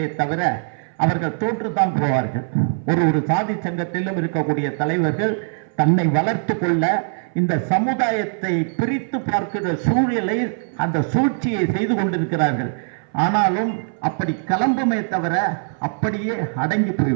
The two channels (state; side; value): silent; left; 60 dB below the other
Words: தவிர அவர்கள் தோற்றுத்தான் போவார்கள். ஒரு சாதி சங்கத்திலும் இருக்கக்கூடிய தலைவர்கள் தன்னை வளர்த்து கொள்ள இந்த சமுதாயத்தை பிரித்து பார்க்கிற சூழலை, அந்த சூழ்ச்சியை செய்து கொண்டிருக்கிறார்கள். ஆனாலும் அப்படி கிளம்புமே தவிர அப்படியே அடங்கி